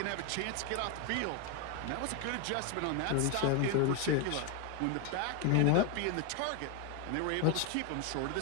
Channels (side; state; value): both; different; correlation 0.01